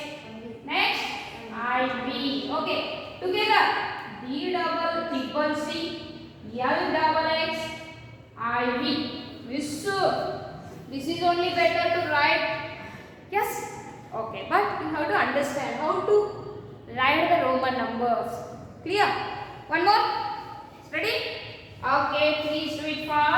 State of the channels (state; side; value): identical; both; correlation 1.00